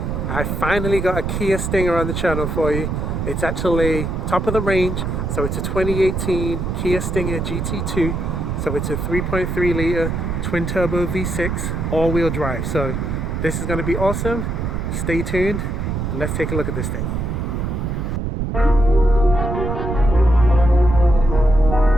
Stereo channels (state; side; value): noise; right; rumble, 2 dB below the sound